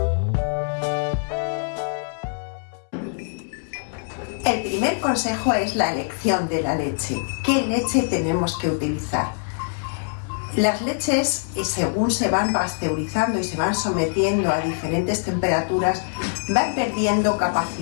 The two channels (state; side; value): silent; right; 63 dB below the other